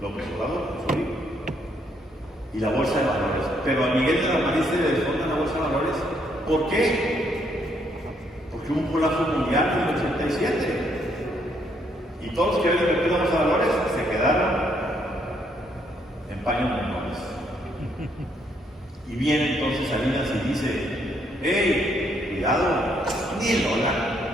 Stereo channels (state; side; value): normal; both; correlation 0.72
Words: López Obrador con su libro. Y la bolsa de valores. Pero a Miguel de la Madrid se le desfonda la bolsa de valores. ¿Por qué? Porque hubo un colapso mundial en el 87. Y todos los que habían invertido en los valores se quedaron en paños menores. Y viene entonces Salinas y dice: hey, cuidado, ni el dólar,